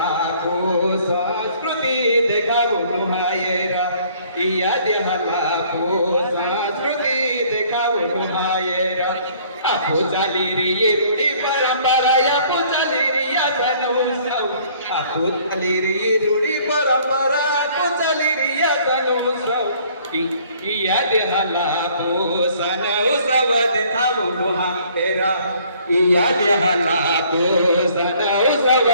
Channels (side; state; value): both; inverted; correlation -0.58